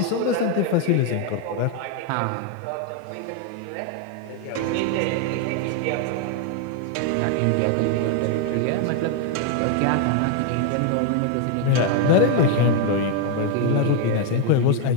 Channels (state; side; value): different; both; correlation 0.01